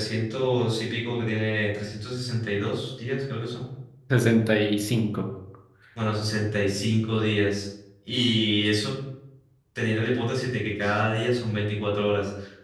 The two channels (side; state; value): both; identical; correlation 1.00